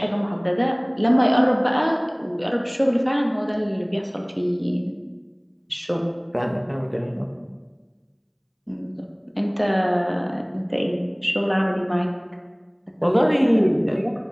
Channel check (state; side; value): identical; both; correlation 1.00